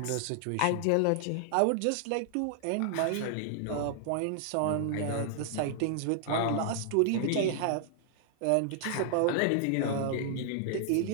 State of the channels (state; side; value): different; both; correlation 0.00